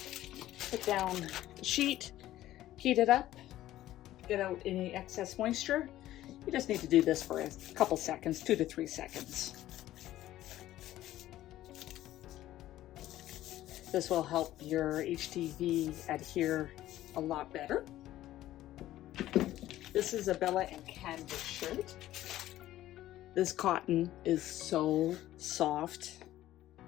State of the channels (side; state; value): right; quieter; 14.2 dB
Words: put down the sheet, heat it up, get out any excess moisture. You just need to do this for a couple seconds, 2 to 3 seconds. This will help your HTV adhere a lot better. This is a Bella and Canvas shirt. This cotton is so soft